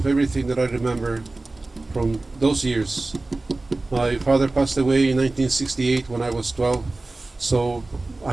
everything that I remember from those years. My father passed away in 1968 when I was 12, so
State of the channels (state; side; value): quieter; left; 3.1 dB